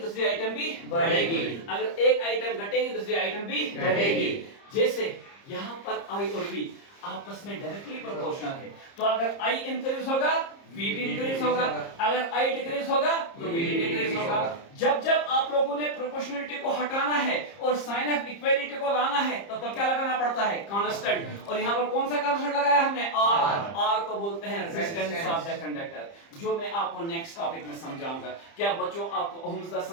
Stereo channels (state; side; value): late; right; 30 ms